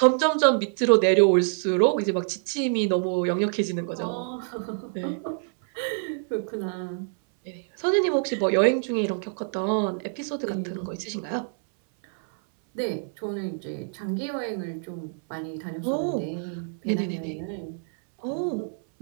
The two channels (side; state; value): left; silent; 61 dB below the other